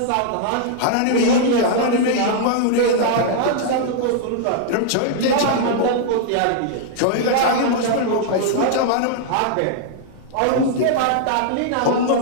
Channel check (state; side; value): different; both; correlation -0.01